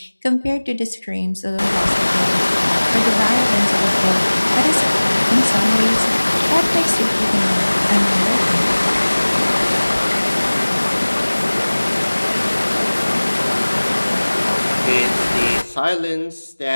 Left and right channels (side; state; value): both; inverted; correlation -1.00